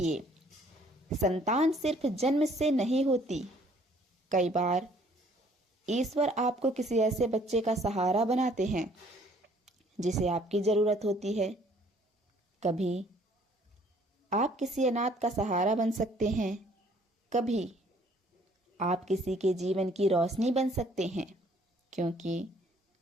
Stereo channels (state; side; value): normal; both; correlation 0.60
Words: संतान सिर्फ जन्म से नहीं होती, कई बार ईश्वर आपको किसी ऐसे बच्चे का सहारा बनाते हैं जिसे आपकी ज़रूरत होती है। कभी आप किसी अनाथ का सहारा बन सकते हैं, कभी आप किसी के जीवन की रोशनी बन सकते हैं, क्योंकि